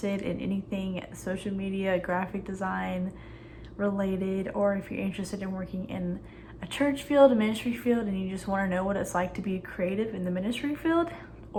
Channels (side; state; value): both; identical; correlation 1.00